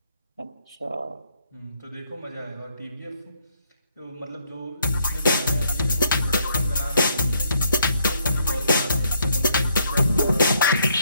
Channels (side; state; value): both; inverted; correlation -0.71